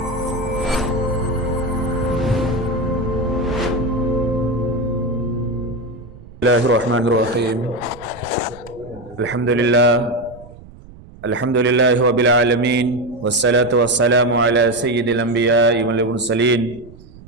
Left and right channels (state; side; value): noise; right; rumble, 20 dB below the sound